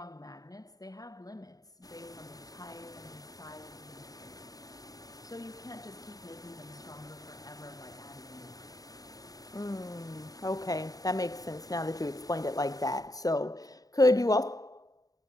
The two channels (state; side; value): late; right; 0.18 ms